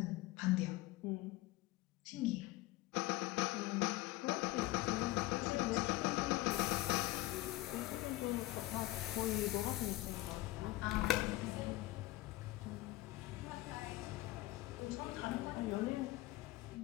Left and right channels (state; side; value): quieter; right; 18.4 dB